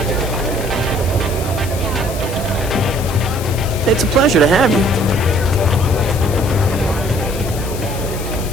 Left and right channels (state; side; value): noise; left; hiss, 12 dB below the sound